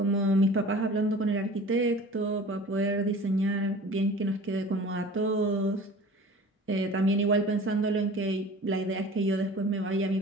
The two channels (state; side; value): normal; both; correlation 0.42